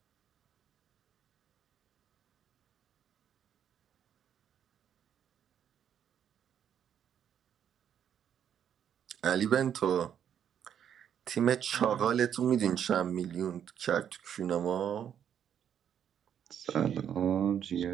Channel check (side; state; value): left; quieter; 9.0 dB